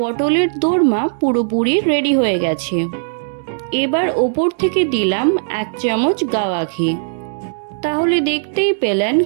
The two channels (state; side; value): silent; left; digital silence